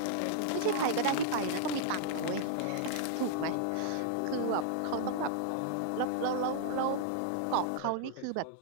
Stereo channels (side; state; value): both; different; correlation -0.01